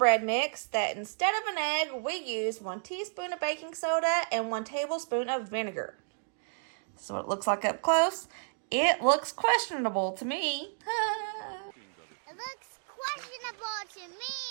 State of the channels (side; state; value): left; silent; digital silence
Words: mix that instead of an egg, we use 1 teaspoon of baking soda and 1 tablespoon of vinegar. This is what it looks like up close. It looks questionable to me. It looks questionable